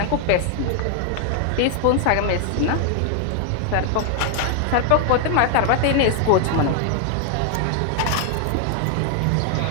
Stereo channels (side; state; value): both; different; correlation 0.00